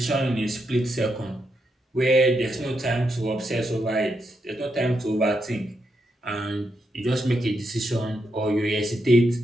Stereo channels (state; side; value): normal; both; correlation 0.82